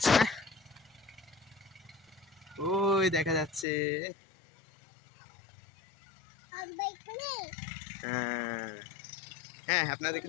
না। ওই দেখা যাচ্ছে। হ্যাঁ, আপনাদেরকে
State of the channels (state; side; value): drops out; right; at 3.7 s